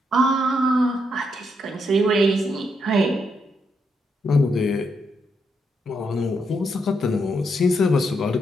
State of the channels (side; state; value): both; normal; correlation 0.79